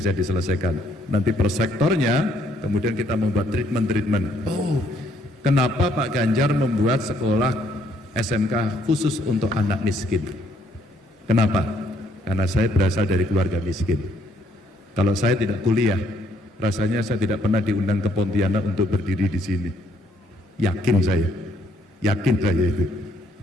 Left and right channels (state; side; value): normal; both; correlation 0.68